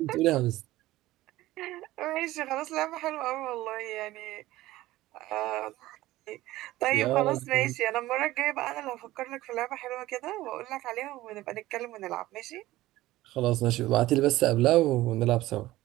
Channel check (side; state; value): left; quieter; 16.8 dB